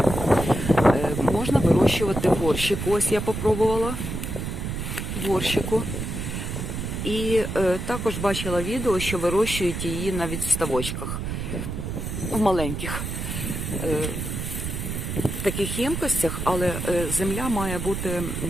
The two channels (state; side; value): noise; right; rumble, 4 dB below the sound